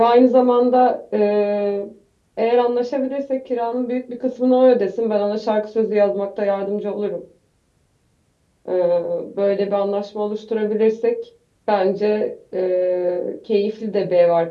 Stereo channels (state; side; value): identical; both; correlation 1.00